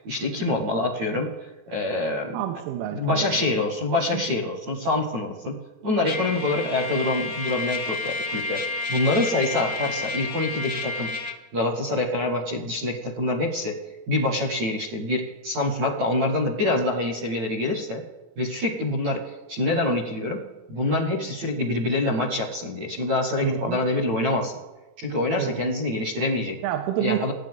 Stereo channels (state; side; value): late; left; 18 ms